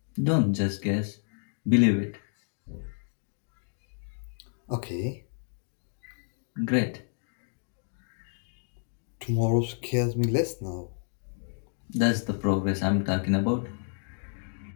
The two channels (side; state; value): right; silent; digital silence